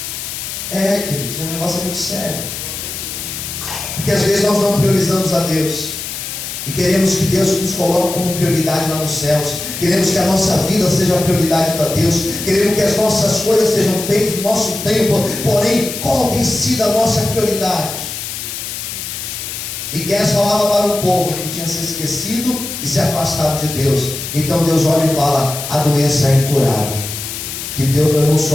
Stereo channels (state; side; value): noise; left; hiss, 7 dB below the sound